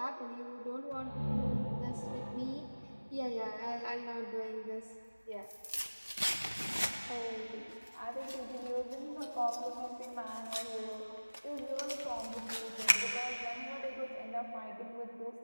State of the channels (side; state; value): both; inverted; correlation -1.00